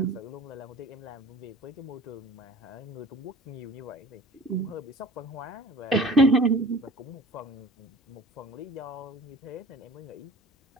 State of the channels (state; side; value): normal; both; correlation 0.44